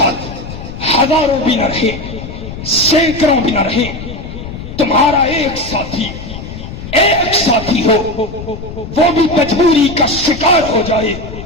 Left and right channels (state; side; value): noise; left; rumble, 10 dB below the sound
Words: ہزاروں بھی نہ رہے، سینکڑوں بھی نہ رہے، تمہارا ایک ساتھی ہو، وہ بھی مجبوری کا شکار ہو جائے۔